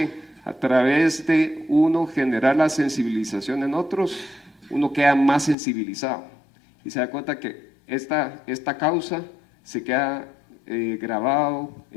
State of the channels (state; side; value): drops out; right; at 5.6 s